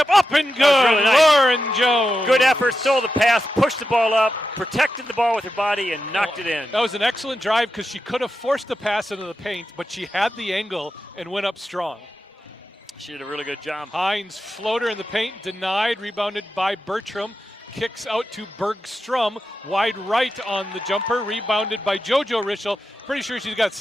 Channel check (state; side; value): normal; both; correlation 0.89